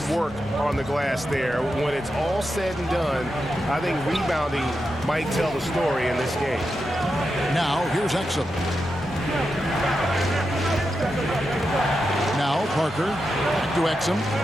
work on the glass there. When it's all said and done, I think rebounding might tell the story in this game. Now here's Exum. Now Parker. Back to Exum.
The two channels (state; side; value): normal; both; correlation 0.88